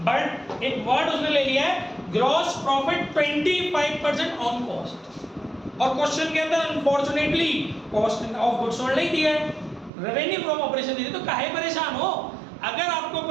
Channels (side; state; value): left; drops out; at 9.9 s